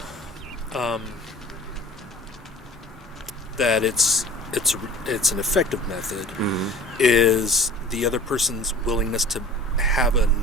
that it's an effective method is the other person's willingness to have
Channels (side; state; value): both; normal; correlation 0.43